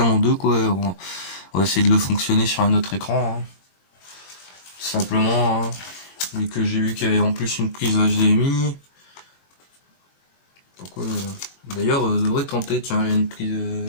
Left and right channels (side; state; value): right; late; 22 ms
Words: en deux quoi. On va essayer de le fonctionner sur un autre écran, hein. Tout simplement, hein. Vu que j'ai vu qu'il y avait en plus une prise HDMI. Pourquoi d'ailleurs, devrait tenter, tiens, il y a une prise.